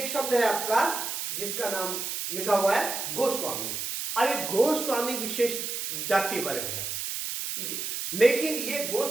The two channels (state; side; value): noise; right; hiss, 4 dB below the sound